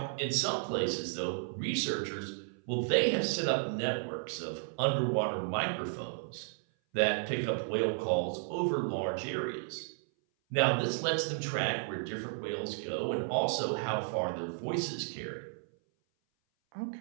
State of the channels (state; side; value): silent; left; 56 dB below the other